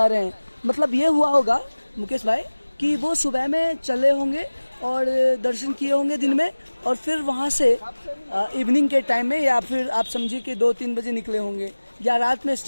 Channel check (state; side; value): inverted; both; correlation -1.00